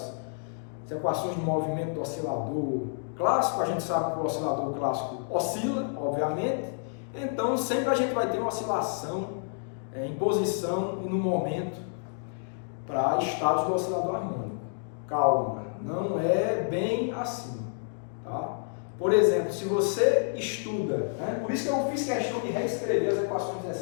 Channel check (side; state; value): right; silent; digital silence